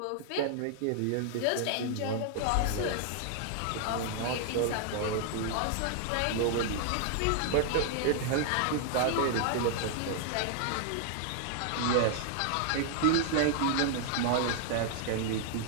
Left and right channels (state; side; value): different; both; correlation 0.00